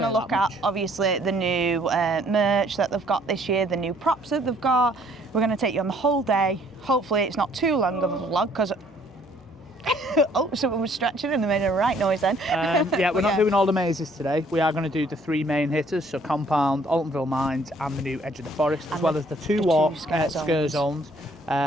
to look at, obviously, the new merch that they've got this year, the new props that they've got. We're going to take you on the whole day. Hopefully it's not too long of a vlog because... oh, someone was stretching and they made a right noise then. Yeah, we're not doing all the mazes today. We are going to do the three main hitters, so Compound, Altonville Mines and the new Edge of the Forest, as well as the two scare zones.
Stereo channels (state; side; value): normal; both; correlation 0.61